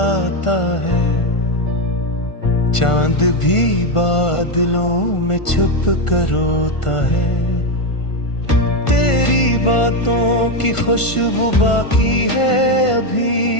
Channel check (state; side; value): late; right; 1.4 ms